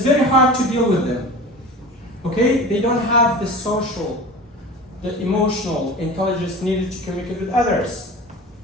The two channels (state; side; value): normal; both; correlation 0.35